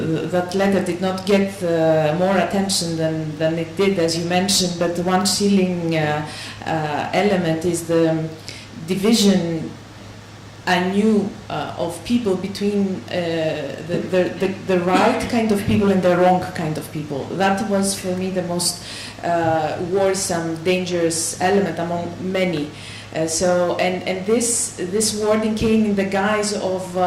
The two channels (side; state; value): both; identical; correlation 1.00